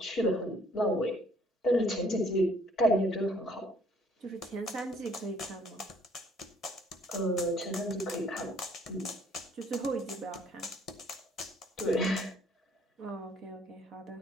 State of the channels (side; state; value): both; normal; correlation 0.62